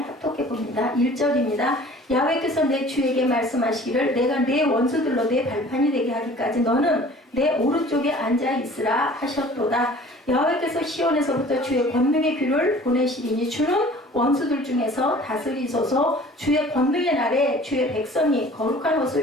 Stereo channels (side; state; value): both; normal; correlation 0.48